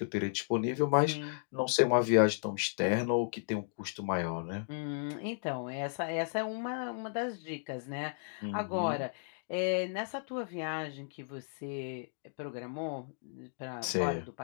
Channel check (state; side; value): silent; right; digital silence